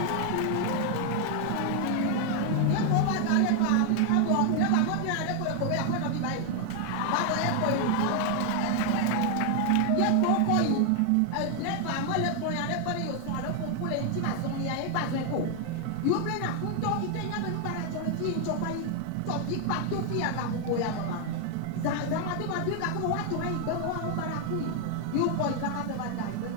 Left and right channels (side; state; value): both; different; correlation 0.01